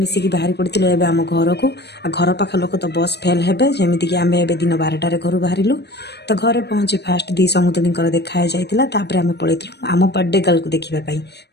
ମିଶିକି ବାହାରି ପଡ଼ିଥିଲୁ ଏବେ ଆମ ଘରକୁ। ଆଉ ଘର ପାଖ ଲୋକ ତ ବସ୍ ଫେଲ୍ ହେବେ, ଯେମିତିକି ଆମେ ଏବେ ଦିନ 12ଟାରେ ଘରୁ ବାହାରିଲୁ। ତ ଘରେ ପହଞ୍ଚି ଫାଷ୍ଟ ଦି ସମୁଦୁଣୀଙ୍କର ଦେଖା ହେଇଯାଇଥିଲା। ତାପରେ ଆମେ ପଳେଇଥିଲୁ ଆମ ବାର୍ଥଡେ ଗାର୍ଲକୁ ଦେଖିବା ପାଇଁ।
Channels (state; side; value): late; right; 0.49 ms